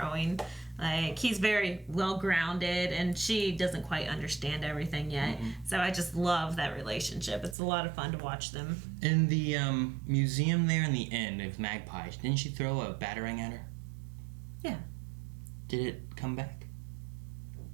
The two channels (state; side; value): drops out; left; at 7.6 s